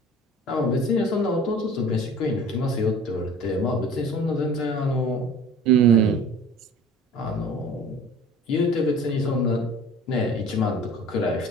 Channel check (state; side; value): normal; both; correlation 0.43